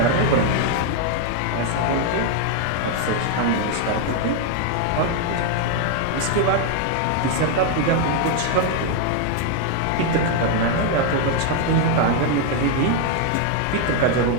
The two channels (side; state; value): both; different; correlation 0.01